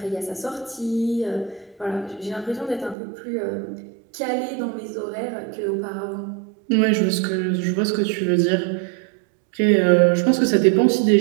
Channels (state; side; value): drops out; left; at 3.0 s